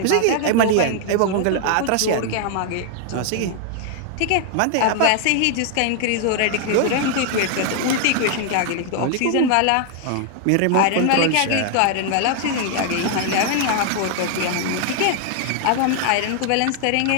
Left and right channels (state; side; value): different; both; correlation 0.00